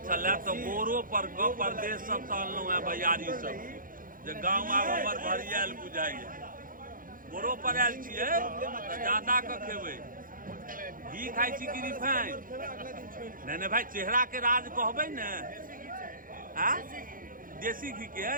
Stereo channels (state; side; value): late; left; 0.40 ms